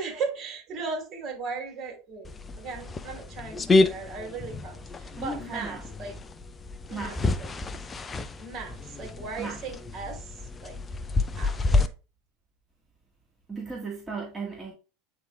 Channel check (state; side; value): normal; both; correlation 0.74